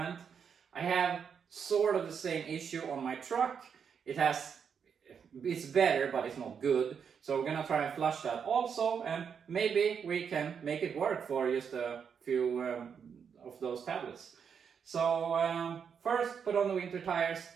I have sort of the same issue on my truck. It's better, but it's not good. So we're gonna try and flush that also, and maybe we can make it work for just a few of those tablets. So first put on the winter tires,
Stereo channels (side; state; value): left; quieter; 7.0 dB